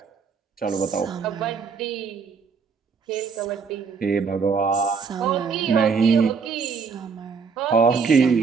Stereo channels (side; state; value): left; quieter; 5.5 dB